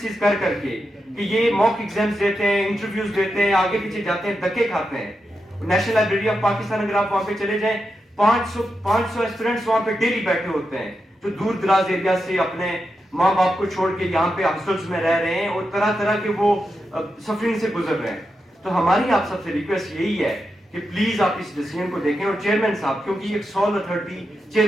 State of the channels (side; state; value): both; normal; correlation 0.87